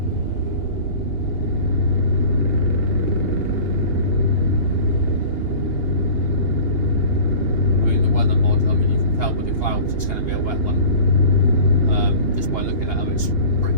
I mean, the weather mod. I mean, you can tell with the clouds it's going to be a wet one. Just by looking at them, it's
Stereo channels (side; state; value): right; late; 2.8 ms